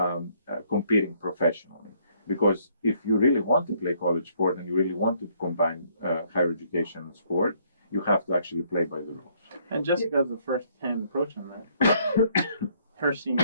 competing professionally. Because if you really want to play college sport and you really want to combine higher education and sport, you have to actually play by the rules. And Jessica's the first-hand approach on that. Her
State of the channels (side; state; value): both; inverted; correlation -0.66